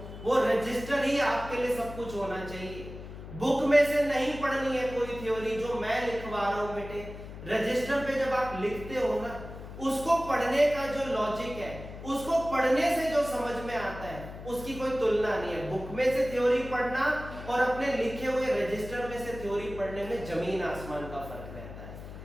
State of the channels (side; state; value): left; noise; hum, 12 dB below the sound